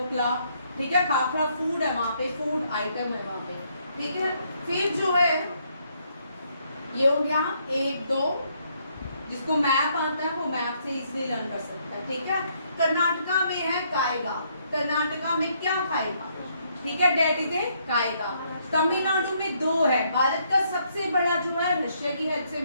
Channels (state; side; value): inverted; both; correlation -0.71